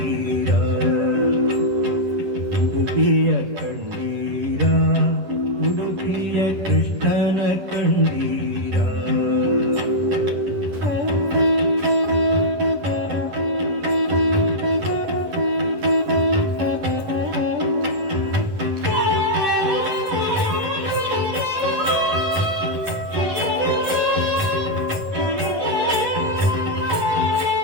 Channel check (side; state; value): left; late; 10 ms